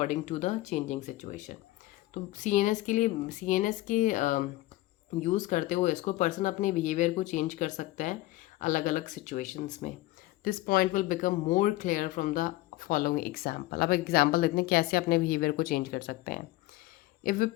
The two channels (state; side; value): quieter; right; 17.6 dB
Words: to the changing situation. तो CNS के लिए, CNS के यूज़ करते हुए इसको पर्सन अपने बिहेवियर को चेंज कर सकता है अलग अलग सिचुएशंस में। This point will become more clear from the following example. अब एग्जाम्पल देखते हैं कैसे अपने बिहेवियर को चेंज कर सकते हैं। If we